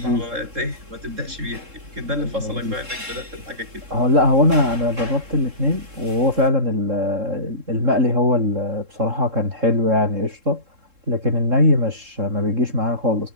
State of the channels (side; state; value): left; late; 3.7 ms